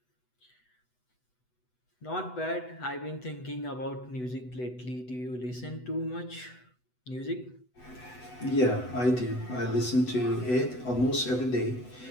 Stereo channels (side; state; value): right; late; 8.0 ms